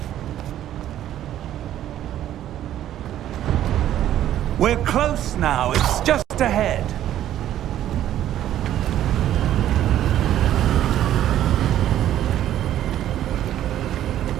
We're close now. It's just ahead.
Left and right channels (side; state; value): left; quieter; 12.0 dB